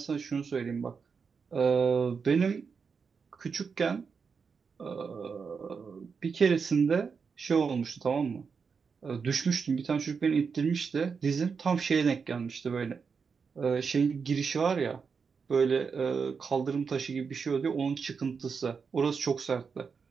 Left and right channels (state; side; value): quieter; left; 5.6 dB